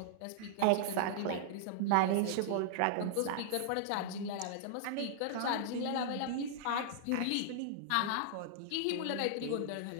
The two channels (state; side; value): different; both; correlation -0.01